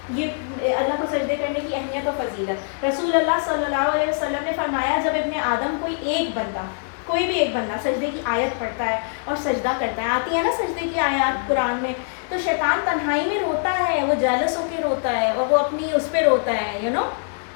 ये अल्लाह को सजदे करने की अहमियत और फजीलत, रसूल अल्लाह सल्लल्लाहु अलैहि वसल्लम ने फरमाया, जब इब्ने आदम कोई भी एक बंदा सजदे की आयत पढ़ता है और सजदा करता है, आती है ना सजदे की आयत कुरान में, तो शैतान तन्हाई में रोता है, वो जेलस होकर रोता है, और वो अपनी उस पर रोता है, यू नो,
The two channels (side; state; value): right; silent; digital silence